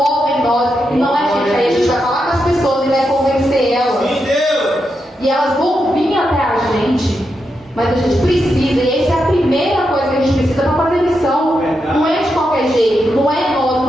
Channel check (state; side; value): normal; both; correlation 0.85